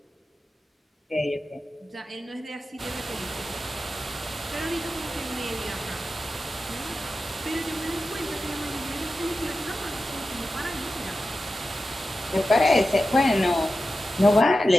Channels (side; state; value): both; normal; correlation 0.92